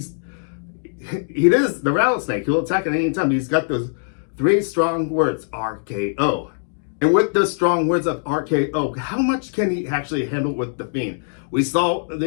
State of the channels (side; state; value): right; silent; digital silence